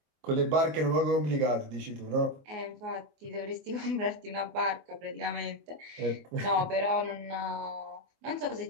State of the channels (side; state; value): left; late; 24 ms